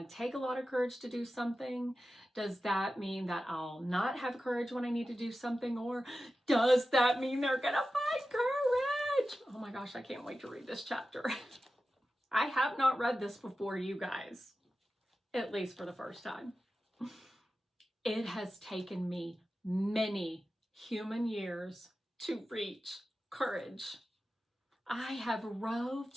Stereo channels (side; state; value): both; normal; correlation 0.93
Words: to take a lot of courage to do something? Does that mean that I'll not have courage when I need to do something? Or does that mean they're going to find courage? Oh my gosh, I can't wait to read this chapter. I have not read this before, you guys, at least for the first time. It has taken me many human years to reach courage. I have